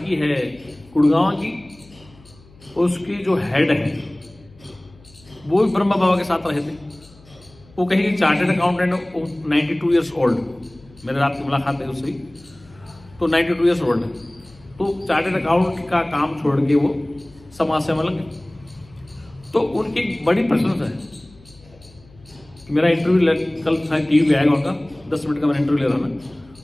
है गुड़गांव की, उसके जो हेड है वो भी ब्रह्मा बाबा के साथ रहे थे। वो कहीं चार्टर्ड अकाउंटेंट, 92 ईयर्स ओल्ड, मेरे रात की मुलाकात है उससे, तो 92 ईयर्स ओल्ड है। तो चार्टर्ड अकाउंट का काम छोड़ के वो समाज सेवा लगे। तो उनकी बड़ी प्रशंसा है। मेरा इंटरव्यू कल टीवी पे आएगा उनका, 10 मिनट का मैंने इंटरव्यू ले रहा ना।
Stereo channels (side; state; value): left; noise; hum, 26 dB below the sound